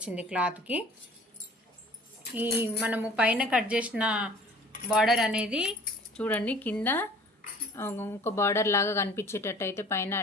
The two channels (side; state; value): both; normal; correlation 0.49